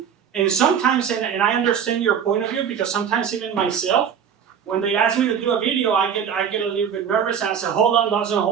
And sometimes, and I understand your point of view, because sometimes even myself, when they ask me to do a video, I get a little bit nervous and I say, hold on, Dawson,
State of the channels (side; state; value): left; quieter; 7.9 dB